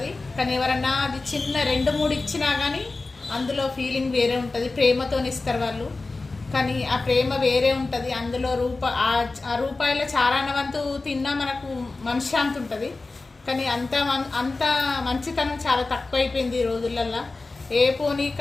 కానీ ఎవరన్నా అది చిన్న 2-3 ఇచ్చినా కానీ అందులో ఫీలింగ్ వేరే ఉంటుంది. ప్రేమతో ఇస్తారు వాళ్ళు, కానీ ఆ ప్రేమ వేరే ఉంటుంది. అందులో ఆ రూపాయల చారానవంతు తిన్నా మనకు మనశ్శాంతి ఉంటుంది. కానీ అంత మంచితనం చాలా తక్కువ అయిపోయింది ఈ రోజులల్లో. ఏ పోనీ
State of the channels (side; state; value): right; quieter; 3.5 dB